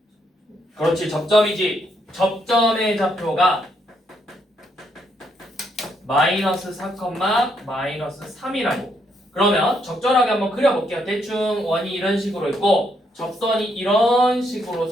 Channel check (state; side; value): normal; both; correlation 0.75